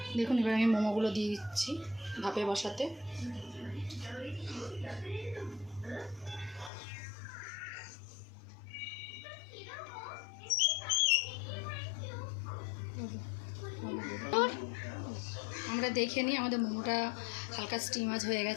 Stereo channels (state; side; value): drops out; right; at 6.7 s